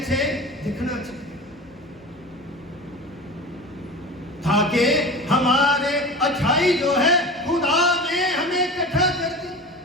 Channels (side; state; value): both; normal; correlation 0.33